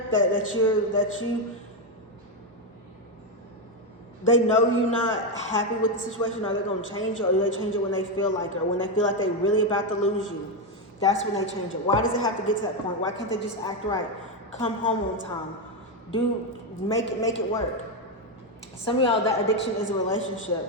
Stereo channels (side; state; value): both; normal; correlation 0.07